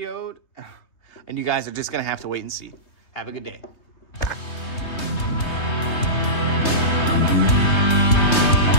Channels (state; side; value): late; right; 3.2 ms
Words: and you guys are just going to have to wait and see. Have a good day.